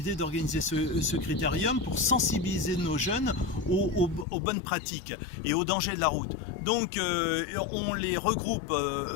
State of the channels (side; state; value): right; drops out; at 4.2 s